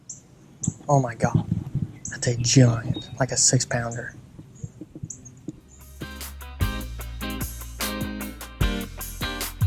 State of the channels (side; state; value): both; identical; correlation 1.00